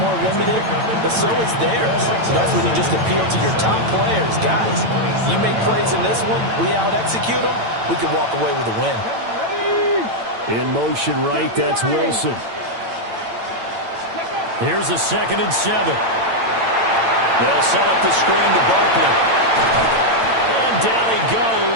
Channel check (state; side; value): late; left; 8.9 ms